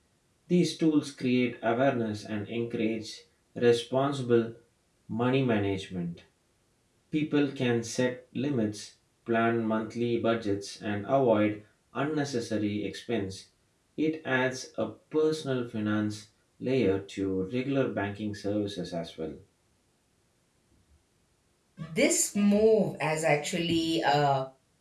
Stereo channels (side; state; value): both; identical; correlation 1.00